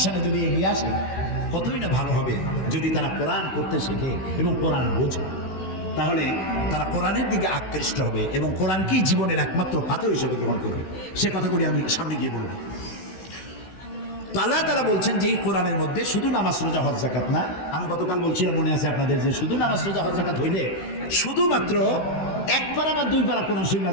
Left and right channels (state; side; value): late; right; 16 ms